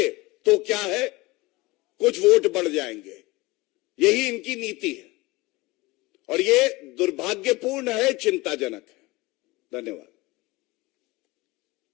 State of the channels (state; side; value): quieter; right; 22.1 dB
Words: तो क्या है, कुछ वोट बढ़ जाएंगे। यही इनकी नीति है और ये दुर्भाग्यपूर्ण है, चिंताजनक है। धन्यवाद।